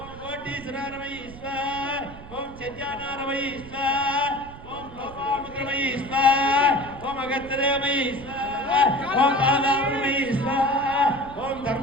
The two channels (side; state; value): right; noise; rumble, 16 dB below the sound